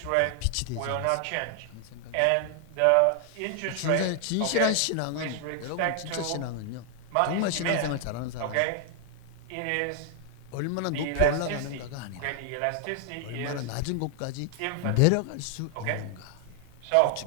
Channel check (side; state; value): both; different; correlation 0.00